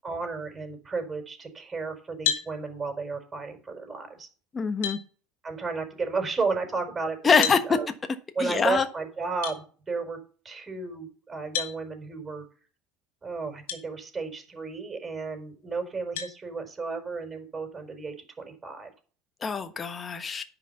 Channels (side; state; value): both; normal; correlation 0.67